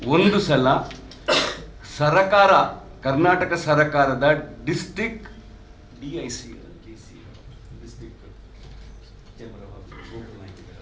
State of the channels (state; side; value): identical; both; correlation 1.00